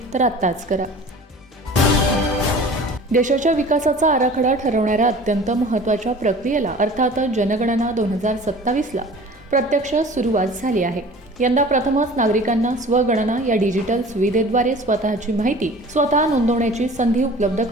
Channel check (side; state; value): both; normal; correlation 0.43